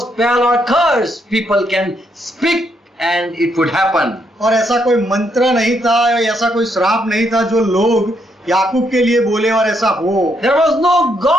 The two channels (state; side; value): normal; both; correlation 0.76